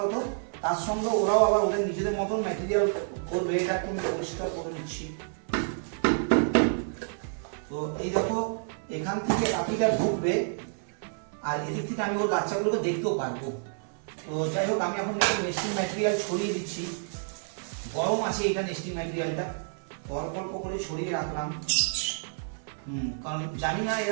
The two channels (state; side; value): silent; left; 56 dB below the other